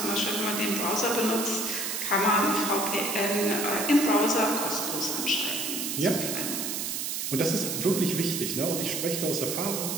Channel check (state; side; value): noise; right; hiss, 2 dB below the sound